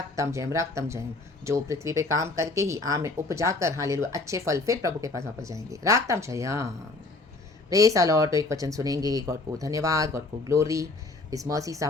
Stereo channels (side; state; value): right; quieter; 3.2 dB